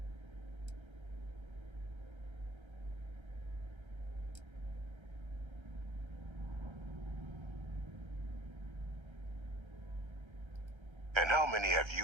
And how many have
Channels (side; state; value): left; late; 1.3 ms